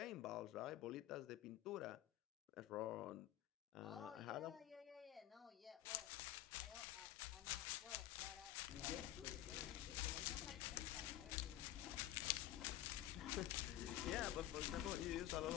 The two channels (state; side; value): quieter; right; 13.5 dB